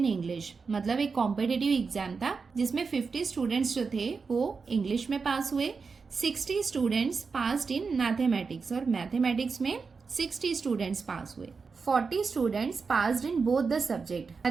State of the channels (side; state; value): left; quieter; 4.9 dB